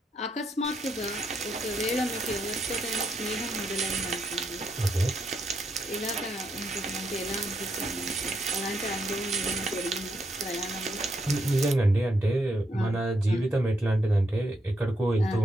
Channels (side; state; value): both; normal; correlation 0.78